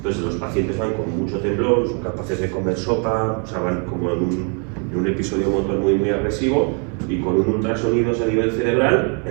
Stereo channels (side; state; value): left; quieter; 38.9 dB